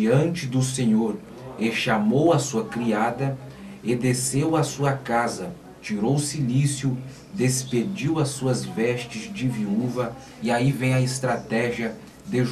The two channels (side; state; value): both; identical; correlation 1.00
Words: do Senhor, e chamou a sua criada, e desceu à sua casa, tirou o cilício, despediu as suas vestes de viúva. E aí vem a estratégia de